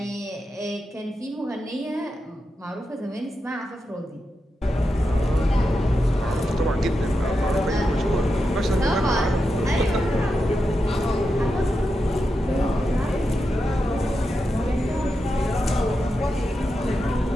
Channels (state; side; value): normal; both; correlation 0.88